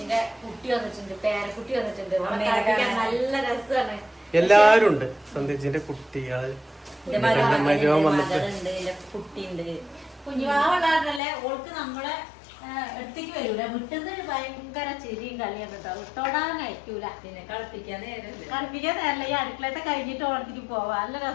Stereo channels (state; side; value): drops out; right; at 11.2 s